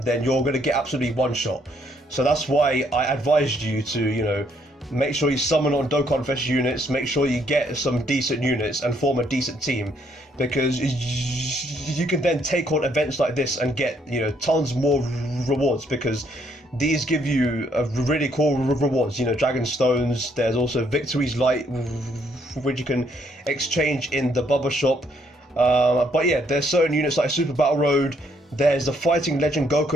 then you're going to get absolutely one shot. So that's why I advised you to, make sure you summon on Dokkan Fest units, make sure you get some decent units and form a decent team, because you can then take on events like this and get, tons more rewards, because these give you really cool rewards, Dragon Stones. There's also Victory's Light, which you can exchange in the Bubba shop. But yeah, there's certain units like Super Battle Road. There's the Fighting Legend Goku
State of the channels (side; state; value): both; normal; correlation 0.70